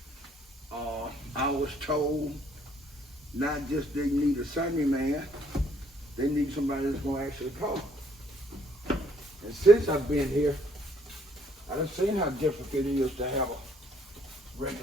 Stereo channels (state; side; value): normal; both; correlation 0.65